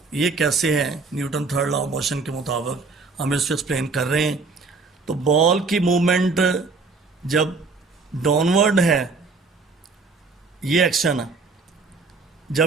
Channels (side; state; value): left; quieter; 4.1 dB